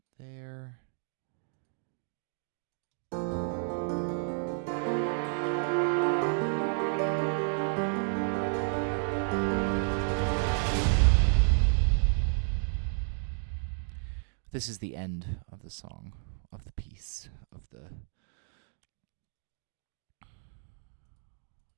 there. This is the end of the song, of the piece, of the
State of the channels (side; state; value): left; silent; 57 dB below the other